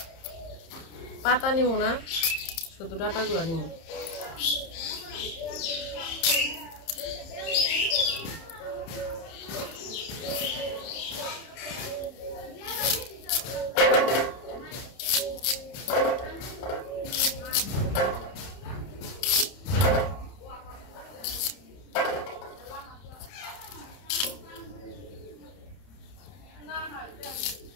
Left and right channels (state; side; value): late; right; 30 ms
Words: পাতা নিব না, শুধু ডাটাগুলো নিব।